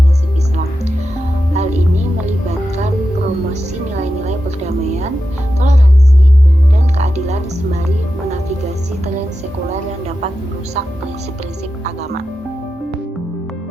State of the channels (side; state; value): both; normal; correlation 0.90